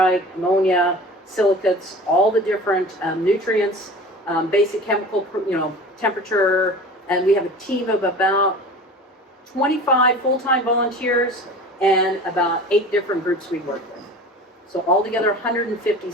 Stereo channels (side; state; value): both; normal; correlation 0.38